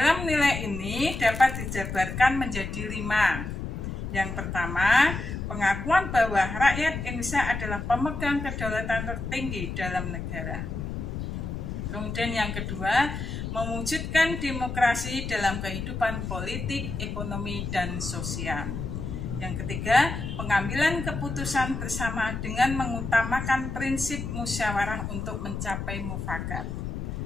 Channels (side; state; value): left; noise; rumble, 5 dB below the sound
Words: nilai ini dapat dijabarkan menjadi 5. Yang pertama, pengakuan bahwa rakyat Indonesia adalah pemegang kedaulatan tertinggi dalam negara. Kemudian yang kedua, mewujudkan demokrasi dalam kehidupan politik, ekonomi, dan sosial. Yang ketiga, pengambilan keputusan bersama dengan mengutamakan prinsip musyawarah untuk mencapai mufakat.